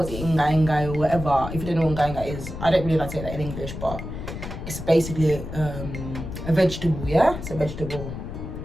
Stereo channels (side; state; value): left; noise; rumble, 8 dB below the sound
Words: inga or whatever. If you don't know what inga is, I don't really like to say that in English, but it's basically a vegetable, yeah? It's a vegetable.